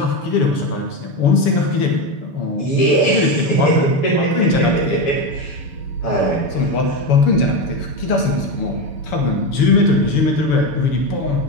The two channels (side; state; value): right; late; 6.9 ms